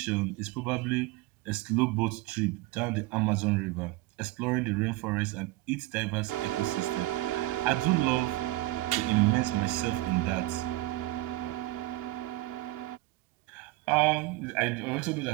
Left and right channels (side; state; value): left; quieter; 19.2 dB